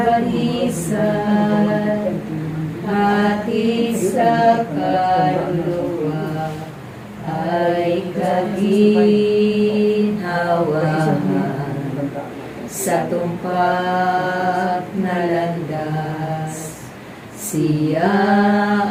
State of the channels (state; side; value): identical; both; correlation 1.00